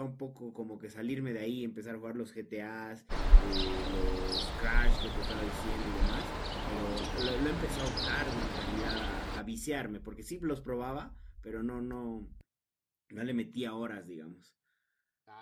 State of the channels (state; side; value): identical; both; correlation 1.00